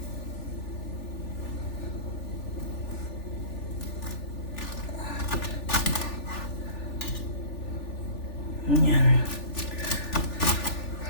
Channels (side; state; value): right; late; 3.4 ms